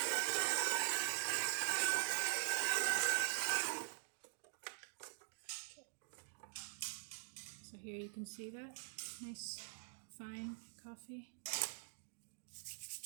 So here you can see that nice fine coffee.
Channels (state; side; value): silent; left; digital silence